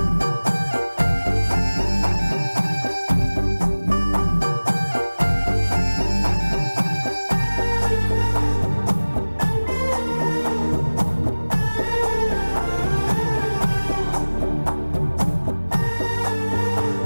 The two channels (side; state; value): both; inverted; correlation -1.00